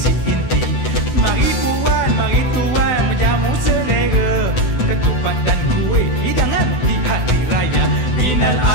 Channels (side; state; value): right; late; 16 ms